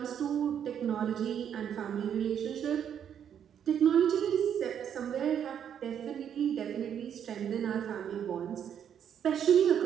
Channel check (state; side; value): quieter; left; 8.8 dB